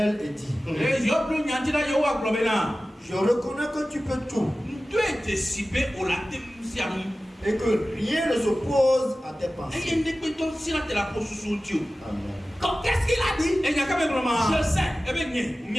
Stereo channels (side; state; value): both; normal; correlation 0.96